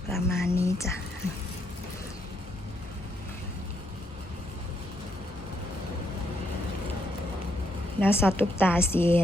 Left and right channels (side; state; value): both; normal; correlation 0.76